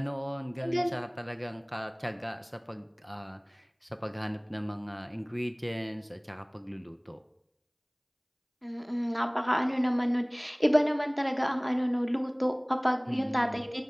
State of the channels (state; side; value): identical; both; correlation 1.00